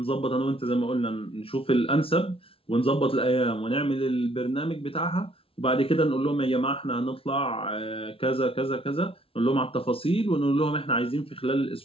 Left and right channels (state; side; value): late; right; 0.26 ms